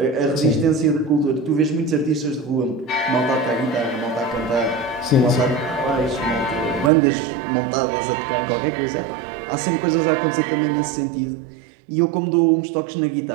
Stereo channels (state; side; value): drops out; left; at 6.9 s